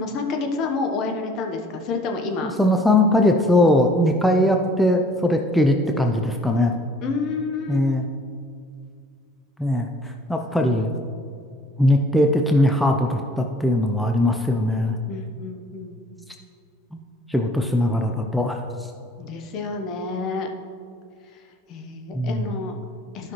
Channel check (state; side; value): normal; both; correlation 0.56